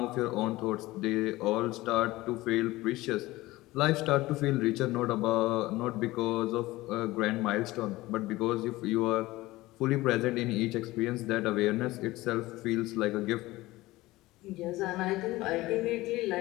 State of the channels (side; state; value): right; quieter; 18.7 dB